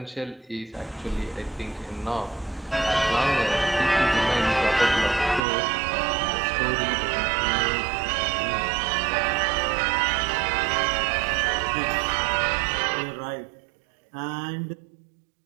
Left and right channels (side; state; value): left; drops out; at 5.4 s